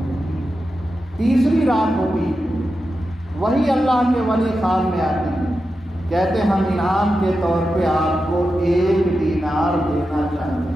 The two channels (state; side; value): normal; both; correlation 0.90